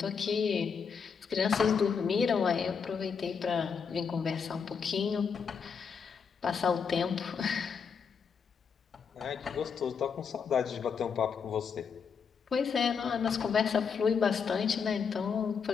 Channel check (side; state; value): right; quieter; 6.2 dB